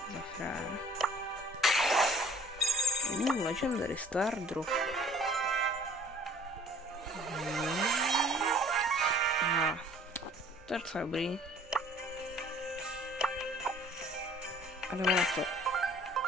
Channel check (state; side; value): normal; both; correlation 0.53